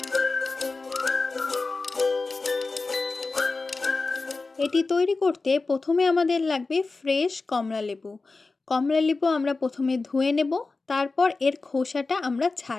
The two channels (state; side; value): quieter; right; 3.8 dB